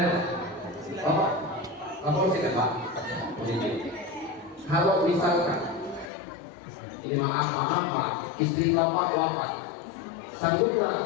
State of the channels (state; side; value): drops out; right; at 6.1 s